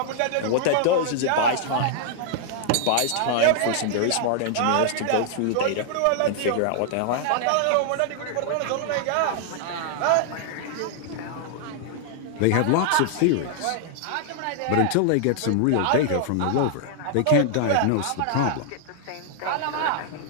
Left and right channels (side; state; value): both; different; correlation 0.00